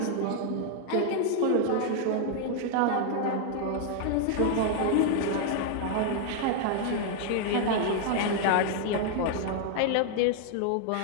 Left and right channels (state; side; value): different; both; correlation 0.00